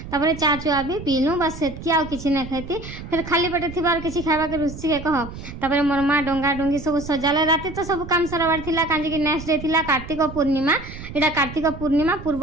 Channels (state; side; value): noise; right; rumble, 12 dB below the sound